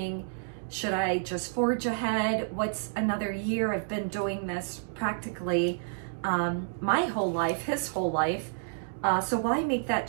should I just forge ahead? What's another year? I've been doing this practically my whole life, his whole life. So why make that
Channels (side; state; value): left; silent; digital silence